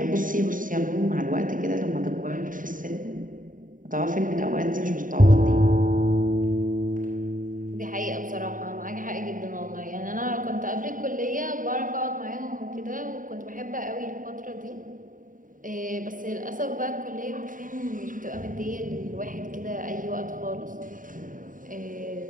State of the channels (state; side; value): late; left; 0.39 ms